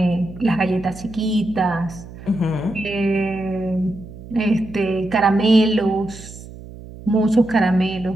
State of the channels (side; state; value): right; noise; hum, 16 dB below the sound